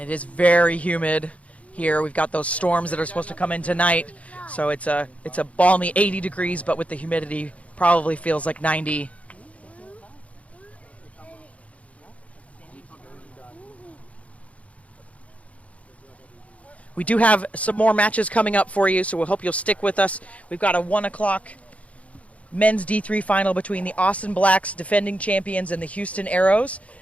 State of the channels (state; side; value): late; right; 0.065 ms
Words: it is very humid here. We've got those storms that are supposed to come in tonight. So it's a balmy 80 degrees, but with the humidity probably feels like 90. We do have some more matches coming up for you, so we hope you'll stick with us. We've got a 1 o'clock men's D3 final between the Austin Blacks, defending champions, and the Houston Arrows.